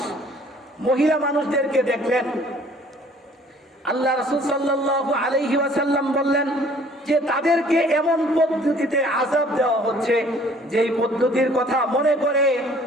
মহিলা মানুষদেরকে দেখলেন, আল্লাহ রাসূল সাল্লাল্লাহু আলাইহি ওয়াসাল্লাম বললেন যে তাদেরকে এমন পদ্ধতিতে আযাব দেওয়া হচ্ছে, যেই পদ্ধতির কথা মনে করে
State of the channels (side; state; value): both; normal; correlation 0.55